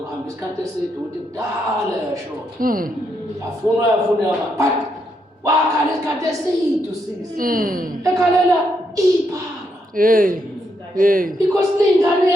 isikhathi eside ukuthi kudala yashona. Yafuna but wakhala isikhathi eside usisi. Ekhalela iphara. Because lingane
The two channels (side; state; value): both; normal; correlation 0.79